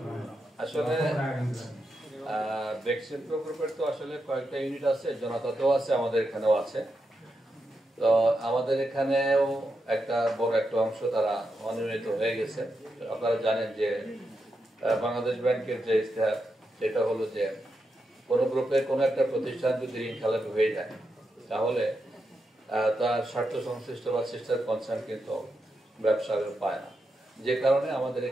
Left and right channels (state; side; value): normal; both; correlation 0.86